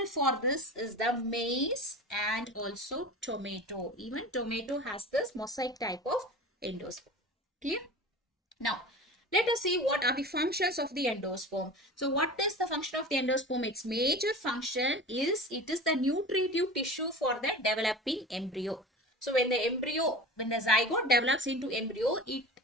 for this is the maize and also tomato. Even tomato has this mosaic type of endosperm. Clear? Now, let us see what are the functions of the endosperm. So what is the function of the endosperm? Its major function is it is the nutritive tissue for the developing embryo. So when the zygote develops into embryo, it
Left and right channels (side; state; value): both; normal; correlation 0.34